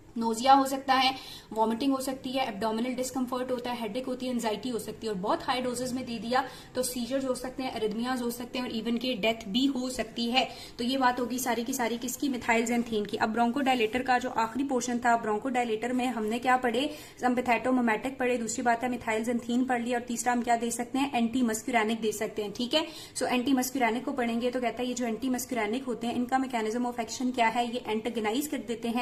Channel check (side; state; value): both; identical; correlation 1.00